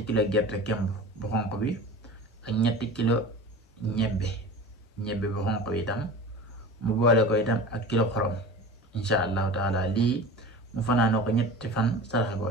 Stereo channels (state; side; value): normal; both; correlation 0.35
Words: kilo gerte kemb bu xonq bi ak 3 kilo ñebbe bu xonq bi itam mu boole ko itam ak kilo xorom insha allahu taala lii mu fanaanoo ko 3 fan saraxe ko